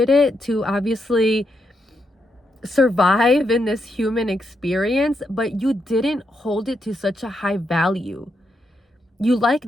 it to obviously survive in this human experience, but you didn't hold it to such a high value. You like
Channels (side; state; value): both; normal; correlation 0.81